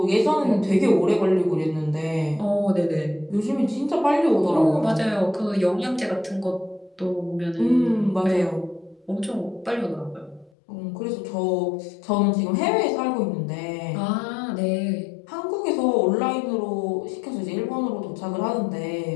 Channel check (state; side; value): drops out; right; at 10.5 s